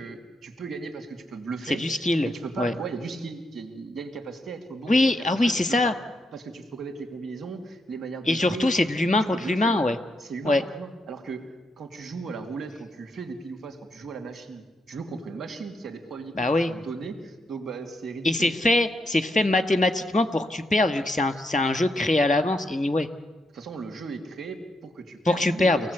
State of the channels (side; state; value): both; normal; correlation 0.80